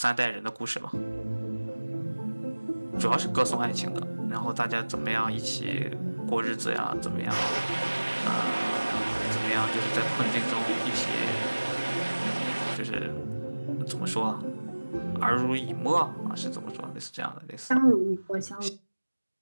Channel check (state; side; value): inverted; both; correlation -1.00